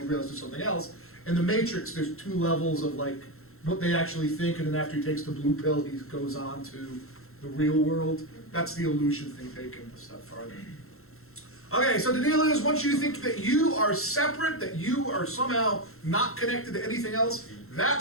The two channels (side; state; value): right; late; 0.62 ms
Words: he realizes there's something else. In The Matrix, there's two levels of like what they actually think, and then after he takes the blue pill, he goes on to the real world. That's the illusion thing taken a step farther. Okay, so the deal is, once you think that you are separate, that you are somehow not connected to anything else,